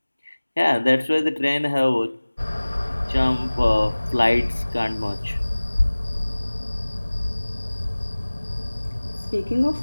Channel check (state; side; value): inverted; both; correlation -1.00